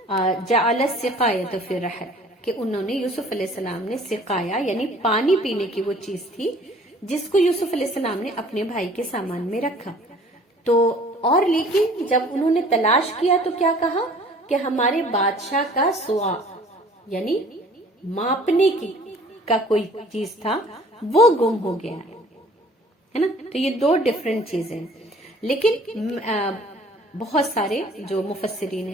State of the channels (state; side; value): normal; both; correlation 0.52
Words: جعل السقایۃ فی الرحل، کہ انہوں نے یوسف علیہ السلام نے سقایا یعنی پانی پینے کی وہ چیز تھی جس کو یوسف علیہ السلام نے اپنے بھائی کے سامان میں رکھا۔ تو اور لیکن جب انہوں نے تلاش کیا تو کیا کہا کہ ہمارے بادشاہ کا سوا یعنی ماپنے کی کا کوئی چیز تھا وہ گم ہو گیا ہے نا۔ تو یہ دو ڈیفرنٹ چیزیں، لیکن بہت سارے جو مفسرین